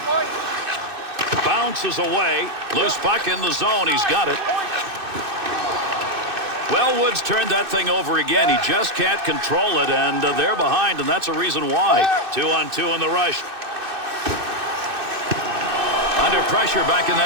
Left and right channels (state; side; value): late; left; 2.6 ms